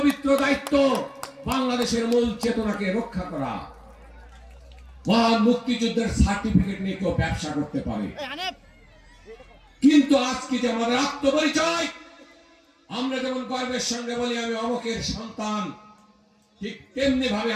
দায়িত্ব বাংলাদেশের মূল চেতনাকে রক্ষা করা। মহান মুক্তিযুদ্ধের সার্টিফিকেট নিয়ে কেউ ব্যবসা করতে পারে, কিন্তু আজকে যে আমাদের আত্মপরিচয়, আমরা যেমন গর্বের সঙ্গে বলি আমি অমুকের সন্তান, ঠিক তেমনি ভাবে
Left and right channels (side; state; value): both; identical; correlation 1.00